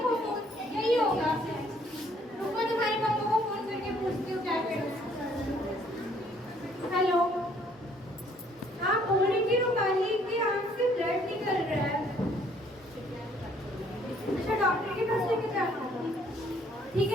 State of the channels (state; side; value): normal; both; correlation 0.63